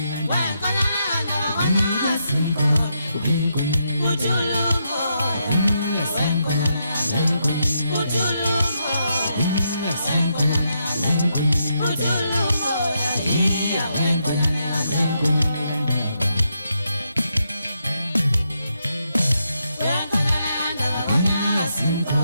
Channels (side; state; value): both; inverted; correlation -0.81